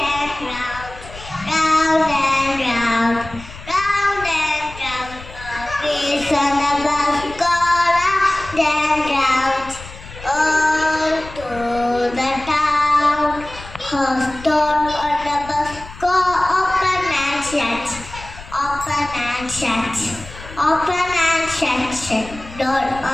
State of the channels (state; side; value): noise; left; rumble, 16 dB below the sound